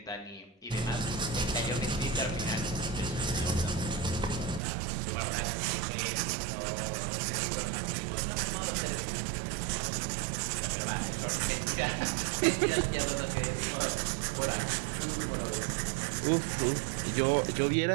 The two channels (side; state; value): left; drops out; at 4.6 s